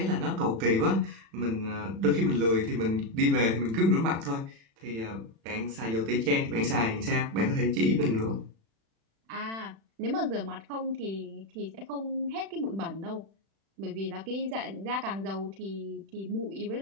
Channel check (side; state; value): left; late; 36 ms